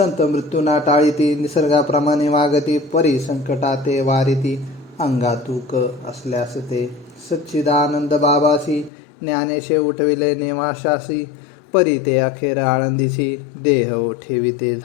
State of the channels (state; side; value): drops out; right; at 8.9 s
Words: मृत्यूना टाळीती निसर्गाप्रमाणे वागती. परी संकटाते वारिती अंगातूक असल्यास ते. सच्चिदानंद बाबासी ज्ञानेशे उठविले नेवाशासी. परी ते अखेर आळंदीसी देह ठेविते